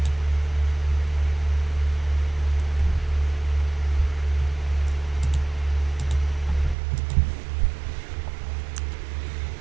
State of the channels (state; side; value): drops out; left; at 6.8 s